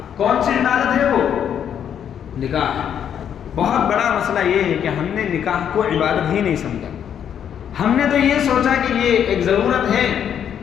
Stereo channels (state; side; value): quieter; right; 8.9 dB